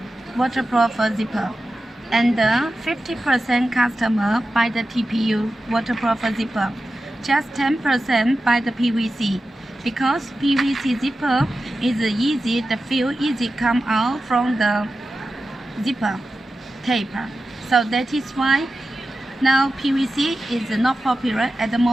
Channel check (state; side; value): normal; both; correlation 0.93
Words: waterproof zipper, and 50% customer buy the TPU waterproof zipper. Just 10% buy the PVC, because PVC zipper is easy, the feel easy come out from the zipper tape. So that is why now PVC is not popular at the